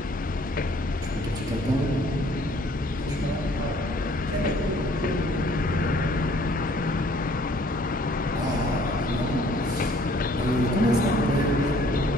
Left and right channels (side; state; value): both; normal; correlation 0.58